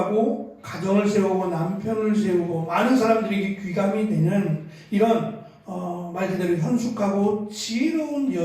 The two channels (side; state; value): both; identical; correlation 1.00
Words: 가정을 세우고 남편을 세우고 많은 사람들에게 귀감이 되는 이런 말 그대로 현숙하고 지혜로운